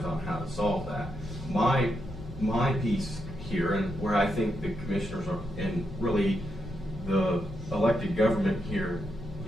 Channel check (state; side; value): noise; left; hum, 15 dB below the sound